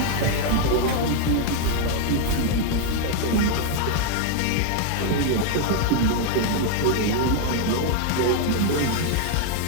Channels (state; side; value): different; both; correlation 0.00